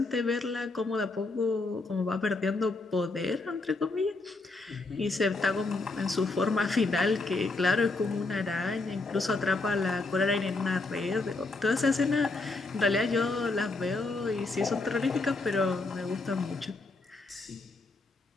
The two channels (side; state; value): right; quieter; 3.4 dB